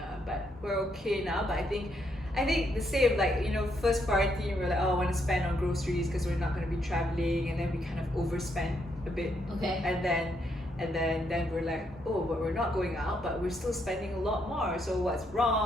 But we're okay now. But I think the same, like, first quarantine we're like, oh, I want to spend on groceries because we're not going to be traveling, and then we kind of overspent a bit. Okay. And then we're like, oh, but we're not going out, but we're still spending a lot more. So what's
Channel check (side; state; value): both; normal; correlation 0.76